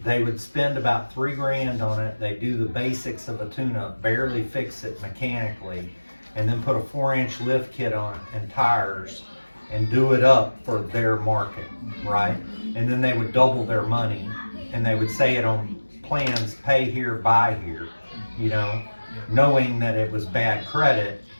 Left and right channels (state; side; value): inverted; both; correlation -1.00